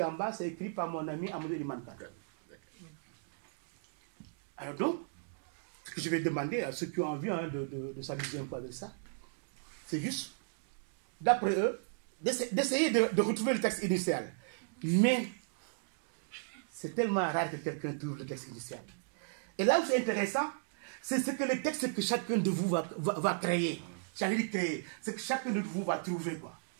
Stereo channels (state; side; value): silent; left; digital silence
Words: en bas, c'est écrit par mon ami Amadou Limanka. Alors donc, ce que je vais demander à ceux qui ont envie de s'amuser un peu avec ça, c'est juste, d'après eux, d'essayer de retrouver le texte initial. Mais c'est tellement rare que quelqu'un trouve le texte initial. Et là où c'est intéressant, c'est ce que le texte que chacun de vous va créer. J'allais dire créer, c'est que chacun de vous va trouver, quoi.